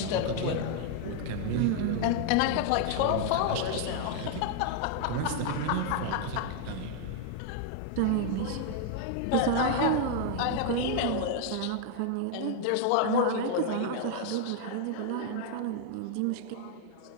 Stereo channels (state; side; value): different; both; correlation 0.00